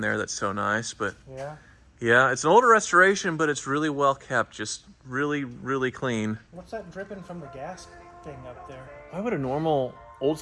there. That's so nice. But Yeah. yeah, it's an older restoration, but it's really well kept. Just really, really clean. What's that dripping from the gas thing up there? Why would a normal old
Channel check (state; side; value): identical; both; correlation 1.00